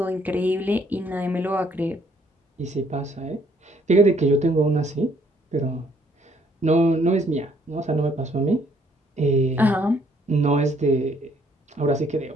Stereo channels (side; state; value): both; normal; correlation 0.65